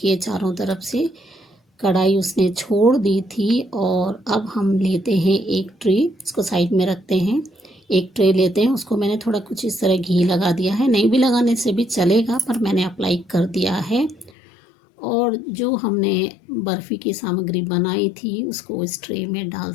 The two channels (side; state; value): right; drops out; at 14.3 s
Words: चारों तरफ से कढ़ाई उसने छोड़ दी थी, और अब हम लेते हैं एक ट्रे, इसको साइड में रखते हैं। एक ट्रे लेते हैं, उसको मैंने थोड़ा कुछ इस तरह घी लगा दिया है, नहीं भी लगाने से भी चलेगा, पर मैंने अप्लाई कर दिया है। और जो हमने बर्फ़ी की सामग्री बनाई थी उसको इस ट्रे में